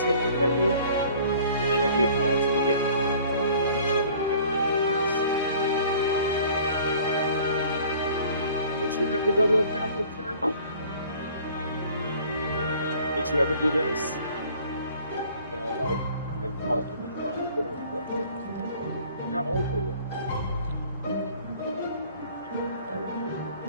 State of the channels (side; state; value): both; inverted; correlation -0.51